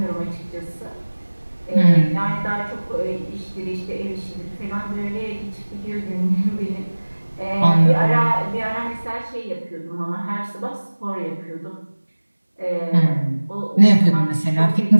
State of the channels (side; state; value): both; inverted; correlation -1.00